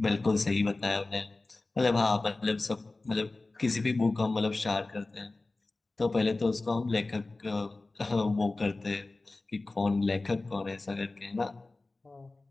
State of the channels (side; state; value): right; quieter; 3.2 dB